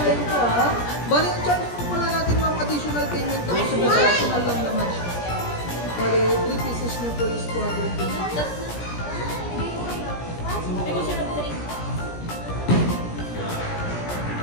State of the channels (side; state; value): right; late; 17 ms